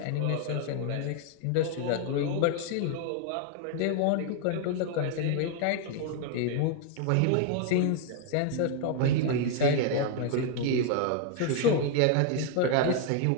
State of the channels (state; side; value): different; both; correlation 0.00